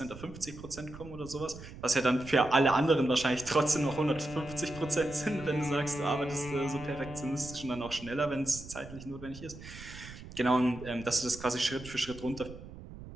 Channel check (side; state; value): right; noise; rumble, 14 dB below the sound